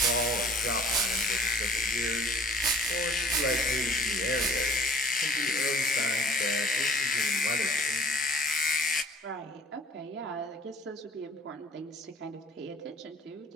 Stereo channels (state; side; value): normal; both; correlation 0.52